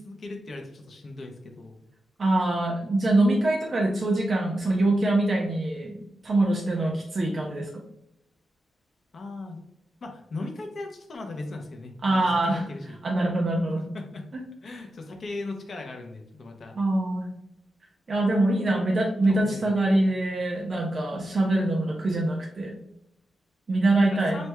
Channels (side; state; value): both; normal; correlation 0.90